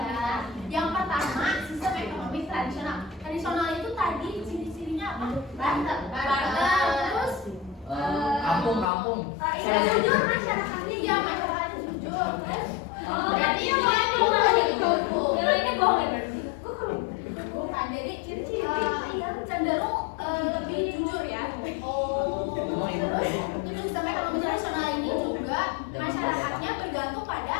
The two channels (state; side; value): drops out; right; at 8.8 s